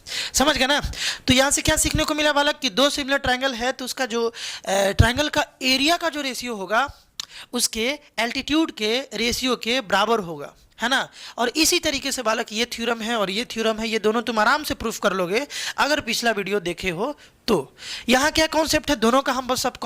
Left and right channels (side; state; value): both; identical; correlation 1.00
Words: समझ गए ना। तो यहाँ से क्या सीखने को मिला बालक कि दो सिमिलर ट्रायंगल है तो उसका जो ट्रायंगल का एरिया का जो रेशियो होगा उसके एल्टीट्यूड के रेशियो के बराबर होगा, है ना। और इसी तरीके से बालक ये थ्योरम है और ये थ्योरम है, ये दोनों तुम आराम से प्रूफ कर लोगे अगर पिछला वीडियो देखे हो तो। यहाँ क्या कॉन्सेप्ट है, दोनों का हम बस सब